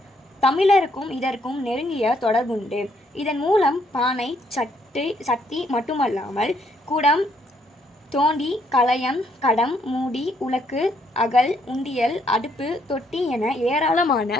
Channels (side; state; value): both; normal; correlation 0.71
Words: தமிழருக்கும் இதற்கும் நெருங்கிய தொடர்புண்டு. இதன் மூலம் பானை, சட்டி மட்டுமல்லாமல் குடம், தோண்டி, கலயம், கடம், மூடி, உலக்கு, அகல், உண்டியல், அடுப்பு, தொட்டி என